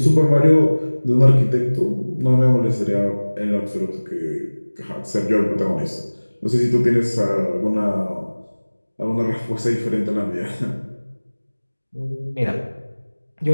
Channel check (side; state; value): both; inverted; correlation -1.00